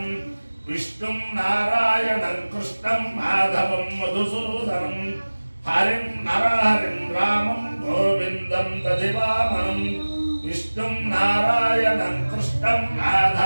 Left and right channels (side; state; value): both; inverted; correlation -1.00